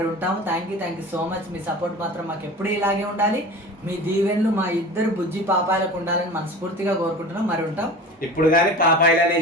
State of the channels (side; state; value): both; normal; correlation 0.36